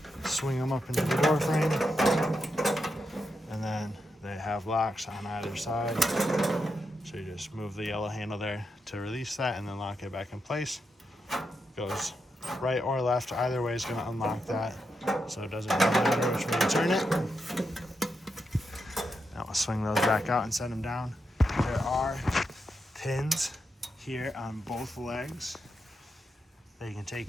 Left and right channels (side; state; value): both; normal; correlation 0.85